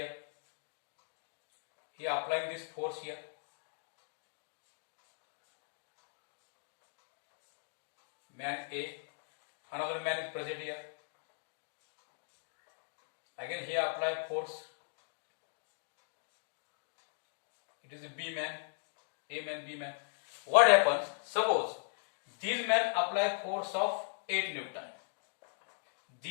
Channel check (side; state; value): right; silent; digital silence